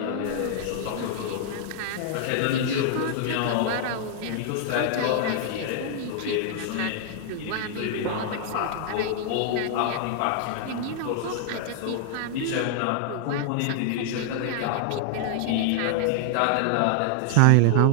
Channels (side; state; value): both; different; correlation -0.01